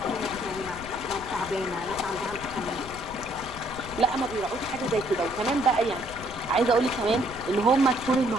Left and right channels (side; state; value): left; noise; rumble, 14 dB below the sound